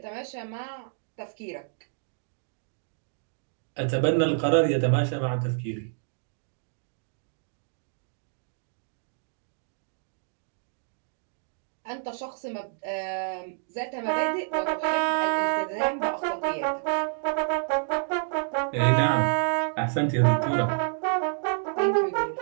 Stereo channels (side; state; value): left; silent; digital silence